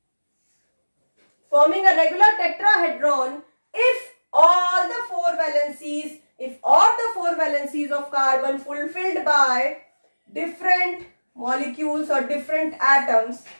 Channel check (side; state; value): both; inverted; correlation -1.00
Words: if all the 4 valencies of carbon fulfilled by different molecules or different atoms,